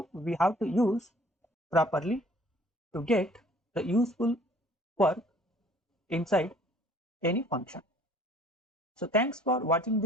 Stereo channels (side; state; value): both; normal; correlation 0.55